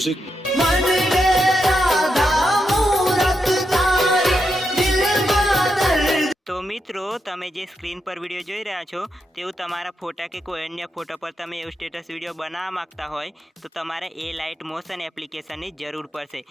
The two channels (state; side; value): normal; both; correlation 0.84